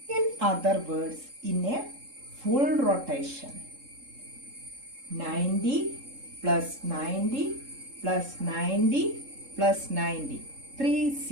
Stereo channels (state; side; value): late; left; 3.7 ms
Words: In other words, in a full rotation, 90 plus 90 plus 90 plus 90,